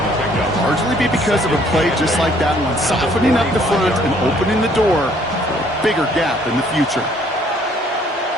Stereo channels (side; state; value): both; normal; correlation 0.62